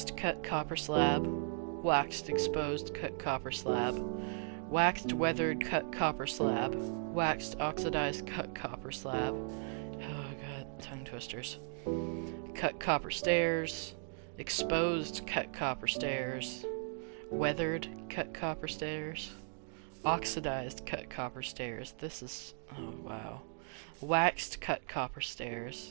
cut copper slab, waxed exposed cut copper slab, waxed weathered cut copper slab, waxed oxidized cut copper slab. Oh god, tongue twisters. Cut copper stairs, exposed cut copper stairs, weathered cut copper stairs, oxidized cut copper stairs. This is, oh wow. Waxed cut copper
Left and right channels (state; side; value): silent; left; 53 dB below the other